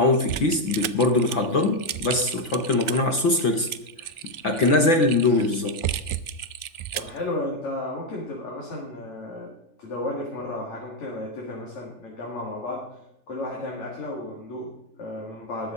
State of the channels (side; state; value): right; late; 3.4 ms